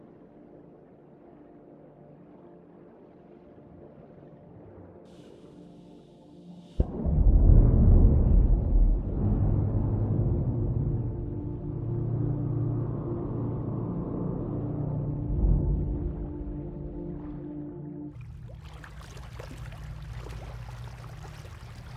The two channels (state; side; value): identical; both; correlation 1.00